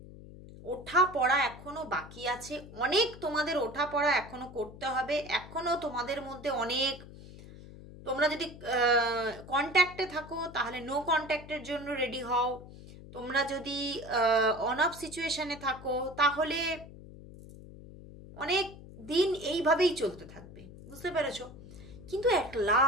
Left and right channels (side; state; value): left; noise; hum, 16 dB below the sound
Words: ওঠা পড়া এখনো বাকি আছে, অনেক তোমাদের ওঠা পড়া এখনো করতে হবে, এখনো তোমাদের মধ্যে অনেক, তোমরা যদি কন্ট্যাক্টে থাকো তাহলে নো কন্ট্যাক্টের জন্য রেডি হও, তোমরা যদি অন অফ সিচুয়েশনে থাকো তাহলে অনেক দিন এইভাবেই চলতে থাকবে, বুঝতে পেরেছো? কিন্তু অ্যাট